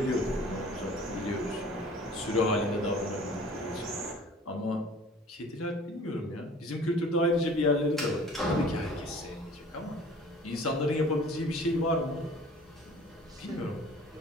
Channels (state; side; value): normal; both; correlation 0.48